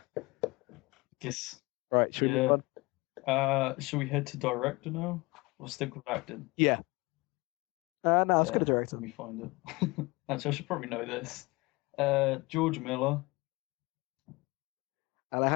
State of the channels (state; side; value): quieter; right; 24.3 dB